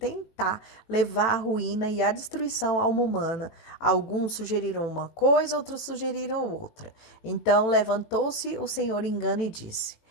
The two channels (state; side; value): late; right; 18 ms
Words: levar à ruína e à destruição a alma humana. Alguns sugeriram uma coisa, outros sugeriram outra. Então levantou-se o Senhor engano e disse: